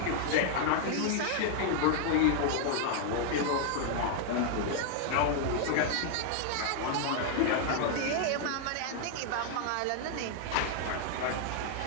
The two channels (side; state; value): both; different; correlation 0.00